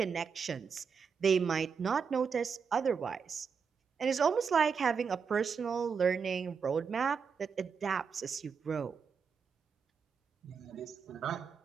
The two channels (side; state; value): left; quieter; 6.1 dB